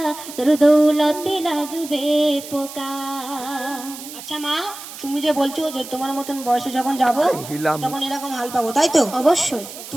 তোর দৌলতে লাগবে পোকা। আচ্ছা মা, তুমি যে বলছো যে তোমার মতন বয়সে যখন যাব তখন এরকম হাল পাবো, তাই তো? অবশ্যই।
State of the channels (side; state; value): right; noise; hiss, 13 dB below the sound